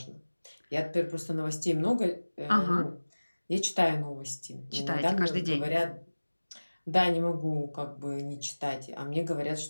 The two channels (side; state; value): both; inverted; correlation -1.00